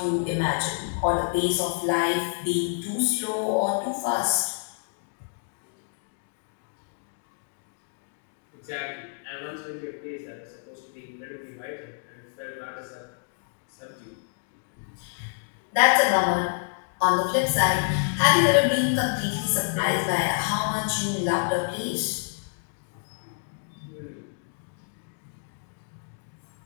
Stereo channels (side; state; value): right; silent; digital silence